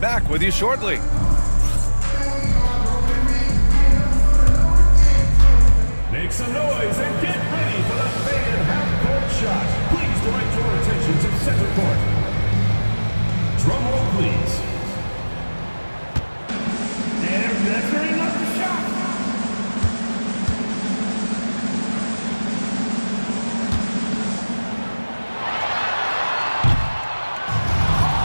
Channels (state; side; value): inverted; both; correlation -1.00